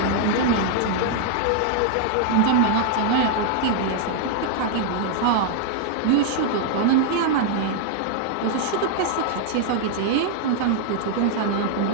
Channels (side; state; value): both; different; correlation -0.01